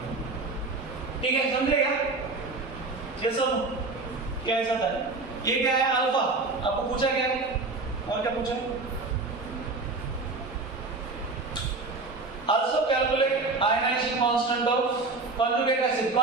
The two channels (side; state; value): left; quieter; 3.6 dB